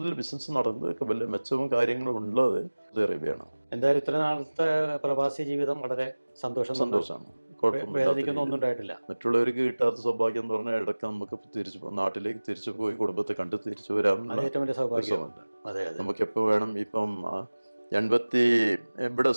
ബിസിനസ് നടന്നതൊക്കെ വലിയ മെച്ചവും കാര്യങ്ങളും ഉള്ളത് സൗദി അറേബ്യയാണ്. എന്തായാലും ഇത്ര നാളത്തെ പ്രവാസി ജീവിതം വളരെ സന്തോഷമാണ്. ഒന്നും ഉണ്ടായിട്ടില്ല. മറ്റുള്ളവർക്ക് കിട്ടാത്ത സൗഭാഗ്യം എന്ന് പറഞ്ഞാൽ ഇടയ്ക്ക് നമുക്ക് നാട്ടിലേക്ക് തിരിച്ചു പോയി കുടുംബത്തെ കണ്ട് തിരിച്ചു വരാൻ നമുക്ക് എപ്പോൾ വേണം. ഇപ്പം ഇവിടെ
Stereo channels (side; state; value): both; inverted; correlation -1.00